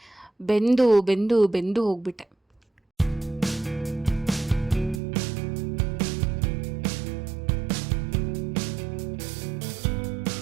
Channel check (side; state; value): left; drops out; at 5.0 s